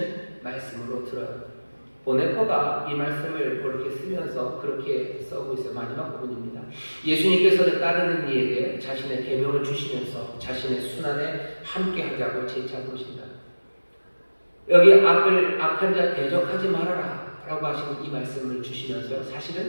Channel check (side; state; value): both; inverted; correlation -1.00